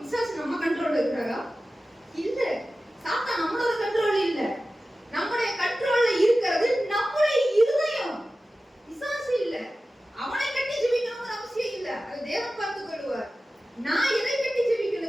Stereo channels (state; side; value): normal; both; correlation 0.95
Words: நம்ம கண்ட்ரோல்ல இருக்கிறாரா? இல்ல. சாத்தான் நம்மளோட கண்ட்ரோல் இல்ல. நம்முடைய கண்ட்ரோல்ல இருக்கிறது நம்முடைய இருதயம். பிசாசு இல்ல. அவனை கட்டி ஜெபிக்கணும்னு அவசியம் இல்ல. அது தேவன் பார்த்துக் கொள்வார். நான் எதை கட்டி